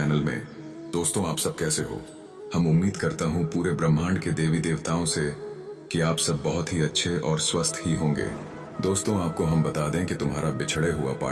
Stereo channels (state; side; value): identical; both; correlation 1.00